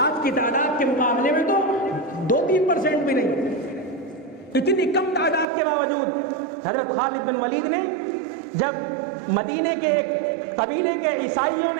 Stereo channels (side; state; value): left; drops out; at 5.5 s